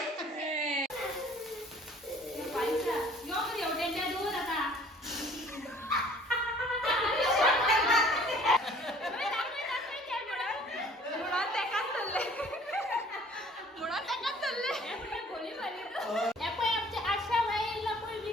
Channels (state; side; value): normal; both; correlation 0.53